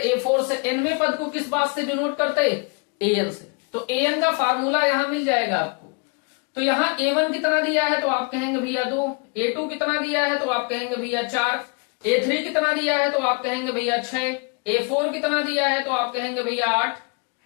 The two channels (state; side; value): quieter; right; 32.9 dB